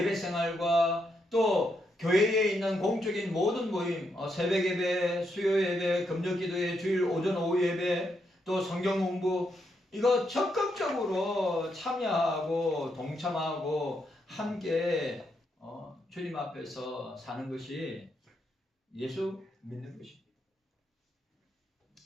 생활과 또 교회에 있는 공적인 모든 모임, 새벽 예배, 수요 예배, 금요 기도회, 주일 오전 오후 예배, 또 성경 공부, 이거 적극적으로 참여하고 동참하고 함께 주님 앞에서 사는 것이 예수 믿는 것입니다.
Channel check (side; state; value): both; normal; correlation 0.80